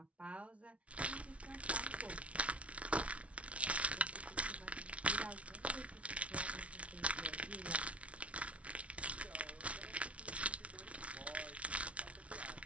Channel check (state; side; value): late; left; 0.063 ms